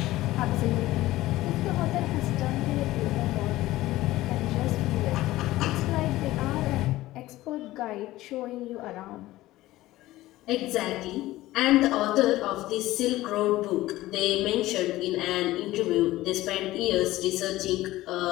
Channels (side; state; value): right; quieter; 16.8 dB